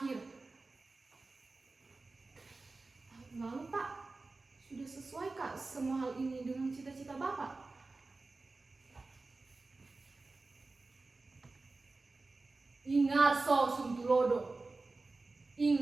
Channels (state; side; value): quieter; left; 3.5 dB